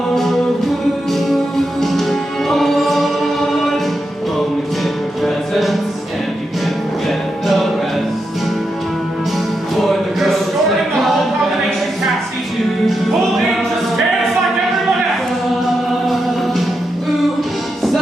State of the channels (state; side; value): normal; both; correlation 0.86